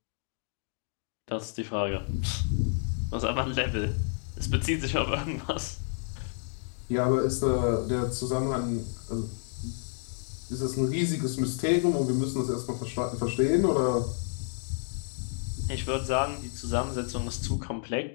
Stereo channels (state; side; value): silent; right; 58 dB below the other